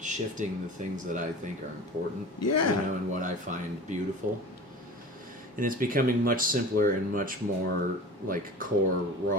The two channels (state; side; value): normal; both; correlation 0.37